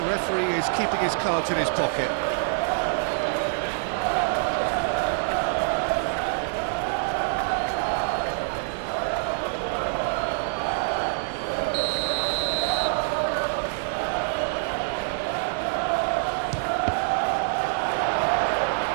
referee is keeping his cards in his pocket.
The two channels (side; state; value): left; silent; digital silence